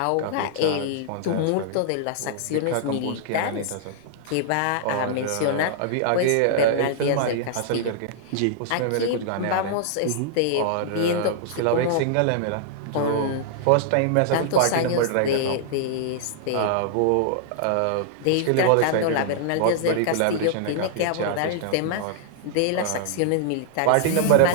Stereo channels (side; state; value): both; different; correlation -0.01